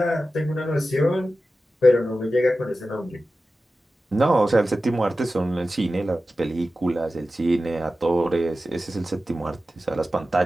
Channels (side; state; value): both; normal; correlation 0.94